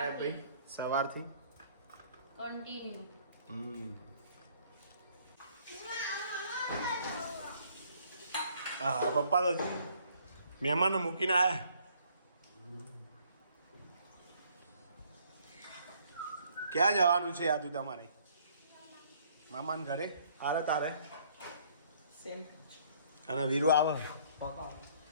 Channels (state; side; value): inverted; both; correlation -0.62